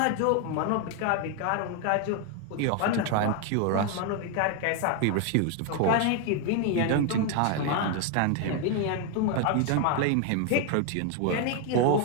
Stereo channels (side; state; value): both; different; correlation 0.01